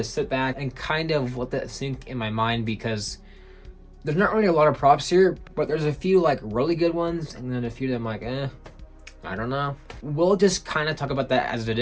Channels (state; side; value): identical; both; correlation 1.00